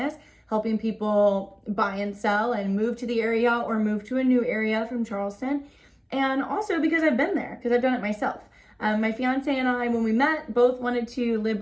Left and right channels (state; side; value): identical; both; correlation 1.00